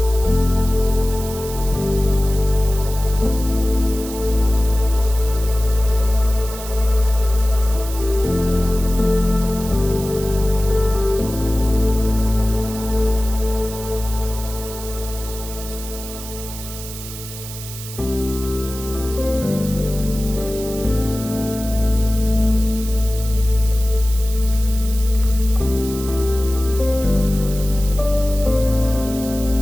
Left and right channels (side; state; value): right; noise; hiss, 12 dB below the sound